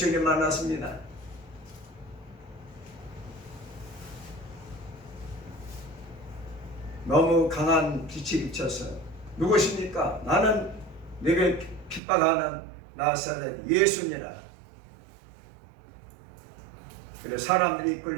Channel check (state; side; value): drops out; left; at 12.0 s